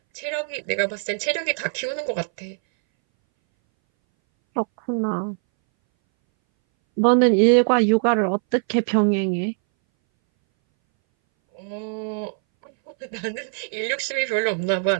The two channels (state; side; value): silent; left; 61 dB below the other